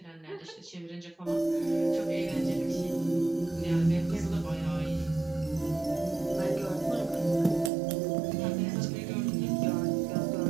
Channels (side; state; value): left; drops out; at 7.7 s